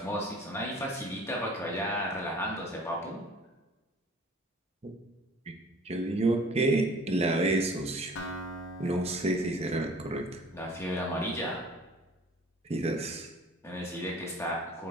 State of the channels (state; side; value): normal; both; correlation 0.48